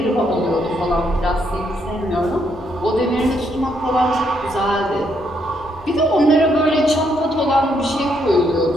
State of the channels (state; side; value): normal; both; correlation 0.74